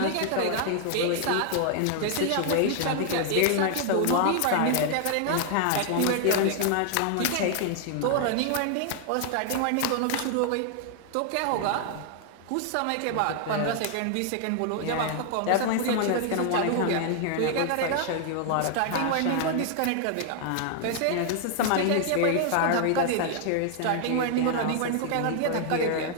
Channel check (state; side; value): different; both; correlation 0.00